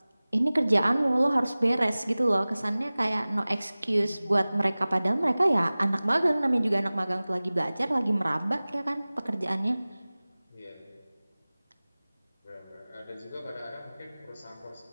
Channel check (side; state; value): both; inverted; correlation -0.99